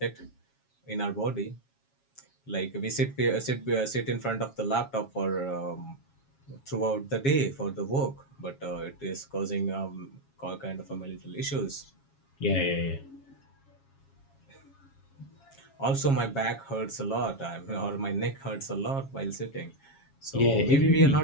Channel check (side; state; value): right; late; 7.3 ms